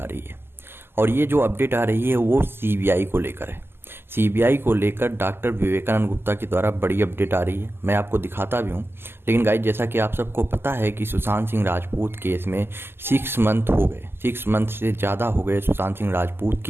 रही है और ये जो अपडेट आ रही है वो सीबीआई को लेकर है। सीबीआई को लेकर डॉक्टर विवेकानंद गुप्ता के द्वारा बड़ी अपडेट आ रही है। मैं आपको दिखाता भी हूँ। लेकिन गाइज, जैसा कि आप सबको पता है कि सुशांत सिंह राजपूत केस में 6 मंथ हो गए, 6 मंथ से ज़्यादा हो गए सुशांत सिंह राजपूत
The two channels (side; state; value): left; late; 0.11 ms